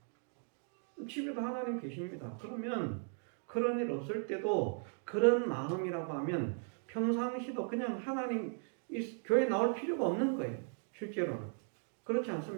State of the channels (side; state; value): left; silent; 53 dB below the other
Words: 집에도 하나님 계십니다. 그러면 그런 일 없을 때도 그런 마음이라고 하면 평상시도 그냥 하나님 교회 나올 필요가 없는 거예요. 실제로는. 그렇지